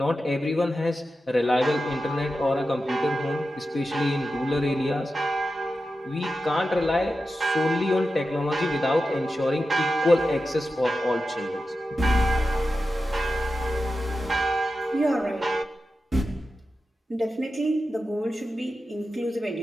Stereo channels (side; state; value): both; normal; correlation 0.92